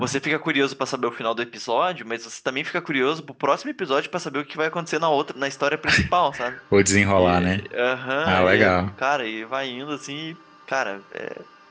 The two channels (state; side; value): identical; both; correlation 1.00